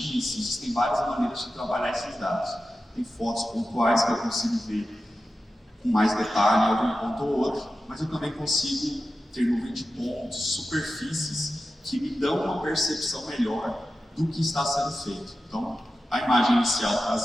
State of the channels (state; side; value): normal; both; correlation 0.92